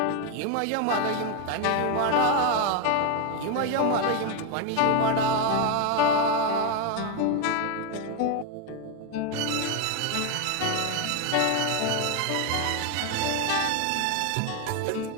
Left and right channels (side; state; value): both; different; correlation 0.01